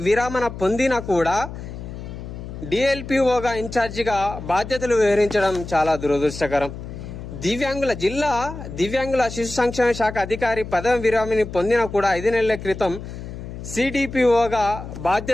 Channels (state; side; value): noise; left; hum, 10 dB below the sound